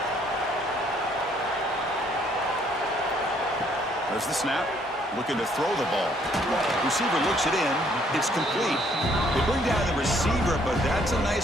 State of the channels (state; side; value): normal; both; correlation 0.65